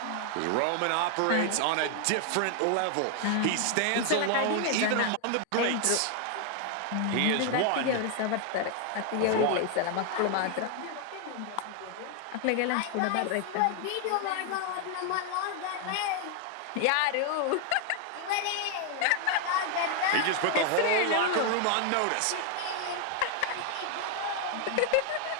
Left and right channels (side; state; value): both; different; correlation 0.00